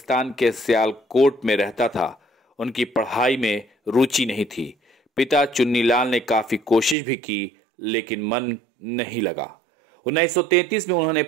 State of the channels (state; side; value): drops out; left; at 7.0 s